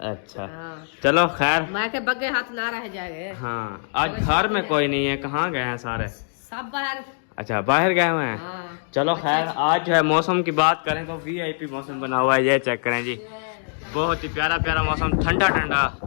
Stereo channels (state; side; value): silent; right; 63 dB below the other